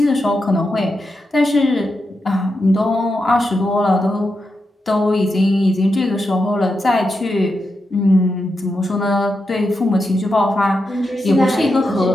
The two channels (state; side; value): normal; both; correlation 0.87